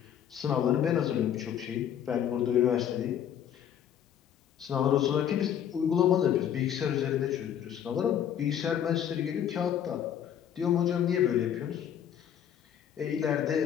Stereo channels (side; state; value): right; quieter; 9.5 dB